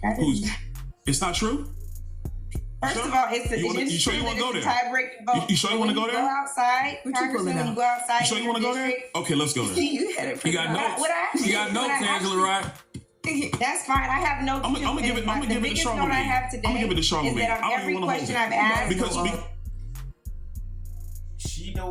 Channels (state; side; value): identical; both; correlation 1.00